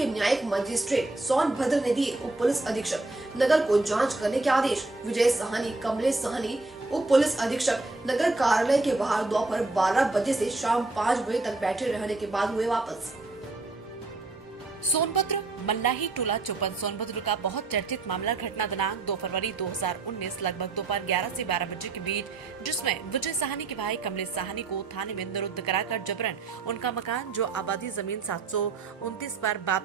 न्यायिक मजिस्ट्रेट सोनभद्र ने दिए उप पुलिस अधीक्षक नगर को जांच करने के आदेश। विजय साहनी, कमलेश साहनी उप पुलिस अधीक्षक नगर कार्यालय के बाहर दोपहर 12 बजे से शाम 5 बजे तक बैठे रहने के बाद हुए वापस। सोनभद्र मल्लाही टोला चौपन सोनभद्र का बहुत चर्चित मामला घटना दिनांक 2 फरवरी 2019 लगभग दोपहर 11 से 12 बजे के बीच, जिसमें विजय साहनी के भाई कमलेश साहनी को थाने में निरुद्ध कराकर जबरन उनका मकान जो आबादी जमीन 729 पर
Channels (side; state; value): left; quieter; 3.4 dB